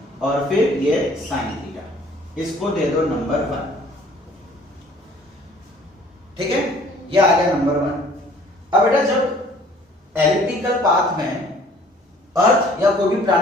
और फिर ये साइन थीटा, इसको दे दो नंबर 1। ठीक है, ये आ गया नंबर 1। अब बेटा जब एलिप्टिकल पाथ में अर्थ या कोई भी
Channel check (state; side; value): normal; both; correlation 0.55